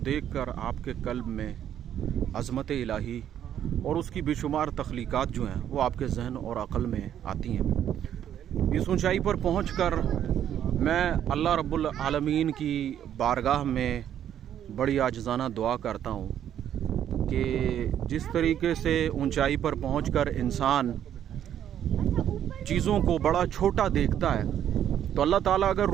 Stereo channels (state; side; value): quieter; left; 10.2 dB